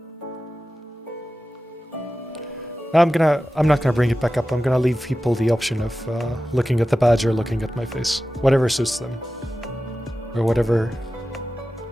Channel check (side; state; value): both; normal; correlation 0.94